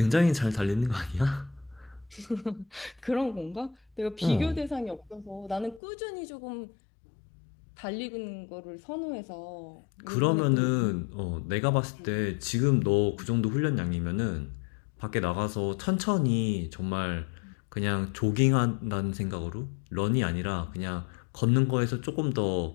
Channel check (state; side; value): drops out; right; at 5.8 s